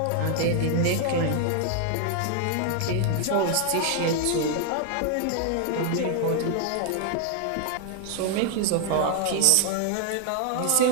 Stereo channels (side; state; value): both; different; correlation 0.00